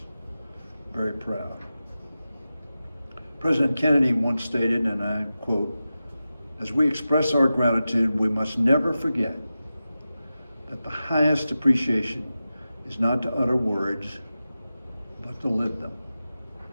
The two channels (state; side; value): inverted; both; correlation -0.93